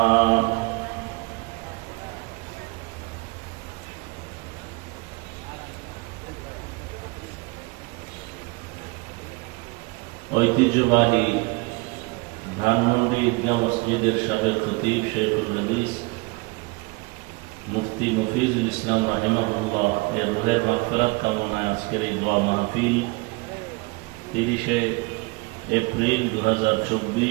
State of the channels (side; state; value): left; quieter; 27.0 dB